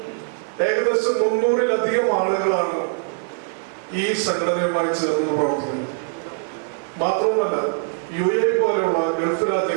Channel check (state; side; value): silent; left; digital silence